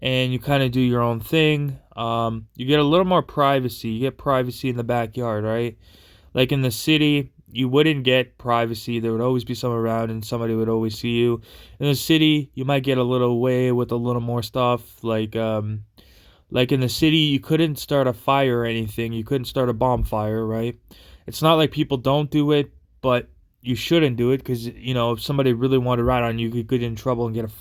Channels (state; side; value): identical; both; correlation 1.00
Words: and you kind of do your own thing. You get a little more privacy. You get privacy in the backyard, right? Like in the city, you wouldn't get privacy. There would always be someone around and somebody would always see you. In the city, you might get a little away with a little more stuff. Like in the city, you couldn't start a fire or anything. You couldn't start a bonfire, right? It's not like people don't do it, but you shouldn't do it because, if somebody really wanted to ride on you, you could get in trouble and get a